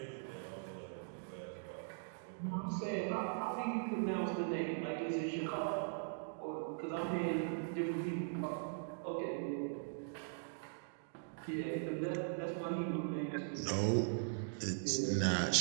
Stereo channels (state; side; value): silent; left; digital silence